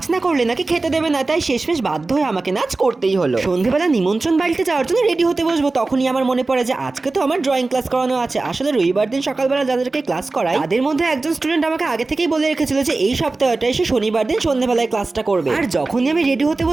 না করলে নাকি খেতে দেবে না, তাই শেষমেশ বাধ্য হয়ে আমাকে নাচ করতেই হলো। সন্ধ্যেবেলা নিমন্ত্রণ বাড়িতে যাওয়ার জন্য রেডি হতে বসবো, তখনই আমার মনে পড়ে যে আজকে তো আমার ড্রয়িং ক্লাস করানো আছে। আসলে রবিবার দিন সকালবেলা যাদেরকে ক্লাস করায় তাদের মধ্যে একজন স্টুডেন্ট আমাকে আগে থেকেই বলে রেখেছিল যে এই সপ্তাহটা এসে শনিবার দিন সন্ধ্যেবেলায় ক্লাসটা করবে। আর যখনই আমি রেডি হতে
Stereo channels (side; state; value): left; quieter; 3.4 dB